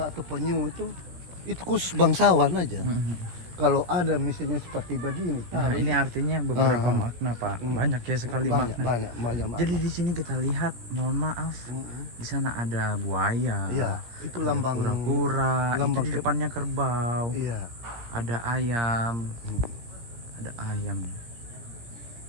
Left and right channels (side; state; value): left; late; 17 ms